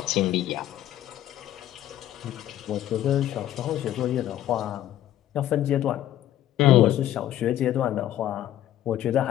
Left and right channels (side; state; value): right; quieter; 12.6 dB